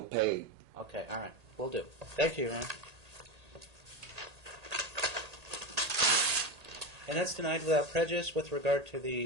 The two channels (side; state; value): left; late; 1.8 ms